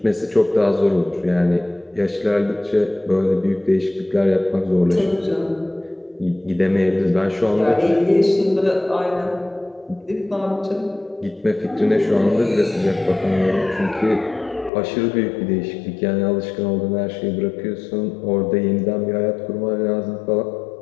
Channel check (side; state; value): right; drops out; at 14.7 s